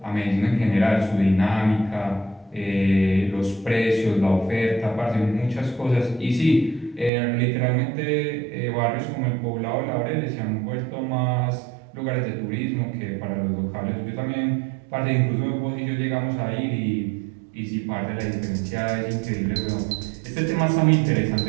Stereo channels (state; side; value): drops out; left; at 7.1 s